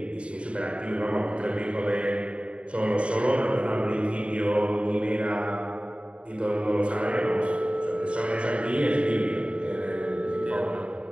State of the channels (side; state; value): left; late; 0.059 ms